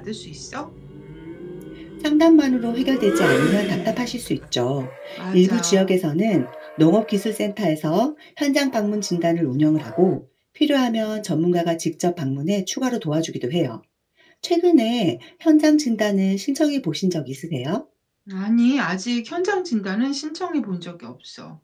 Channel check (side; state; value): both; identical; correlation 1.00